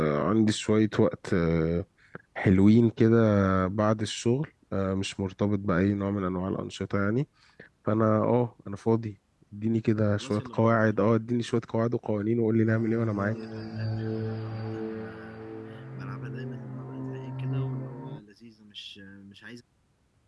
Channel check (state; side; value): identical; both; correlation 1.00